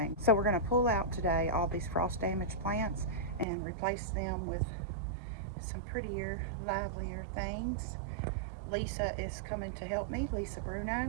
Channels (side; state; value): left; drops out; at 3.5 s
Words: So we're going to pull out today all these frost damaged plants and replace them with some prettier, livelier things. Lisa is coming to help me, Lisa